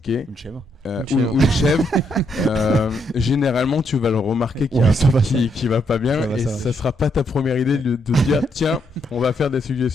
Une chèvre. Ou une chèvre. Généralement, tu vas le remarquer qu'il y a un truc qui va pas bien et ça sera pas ta première idée de dire tiens, on va faire des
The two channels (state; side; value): normal; both; correlation 0.76